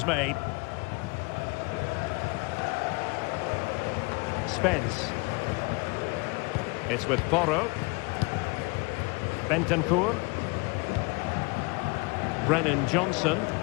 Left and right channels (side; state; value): right; quieter; 28.2 dB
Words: made. Spence. It's with Porro. Bentancur. Brennan Johnson.